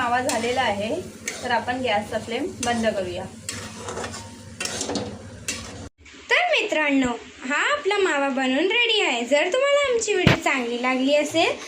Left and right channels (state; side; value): identical; both; correlation 1.00